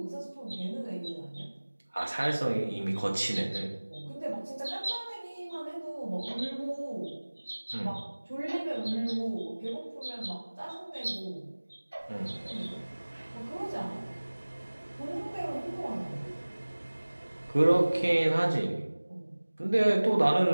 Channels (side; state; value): both; inverted; correlation -1.00